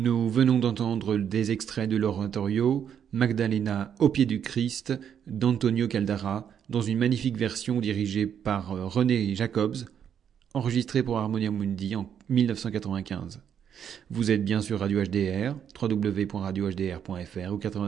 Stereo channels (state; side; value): quieter; left; 8.5 dB